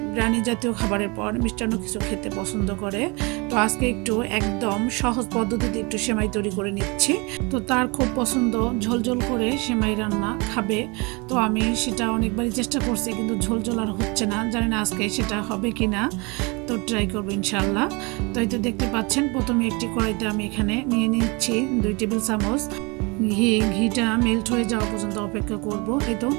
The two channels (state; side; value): quieter; left; 28.1 dB